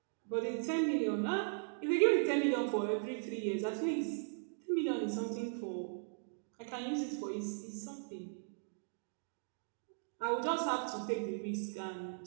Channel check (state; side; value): silent; left; digital silence